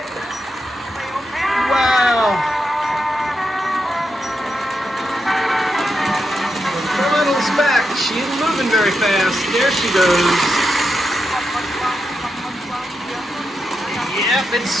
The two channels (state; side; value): normal; both; correlation 0.86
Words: Wow. The little's back. She isn't moving very fast. There she goes. Yep, it's